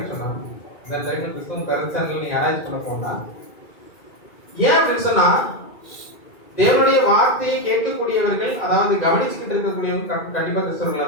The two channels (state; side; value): late; right; 2.3 ms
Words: சொன்னா, இந்த டைம்ல கிறிஸ்தவம் கருத்தாங்க நீ ஆராய்ச்சி பண்ண போனா, ஏன் அப்படின்னு சொன்னா தேவனுடைய வார்த்தையை கேட்கக்கூடியவர்கள், அதாவது கவனிச்சுக்கிட்டு இருக்கக்கூடியவங்க கண்டிப்பா கிறிஸ்தவர்களா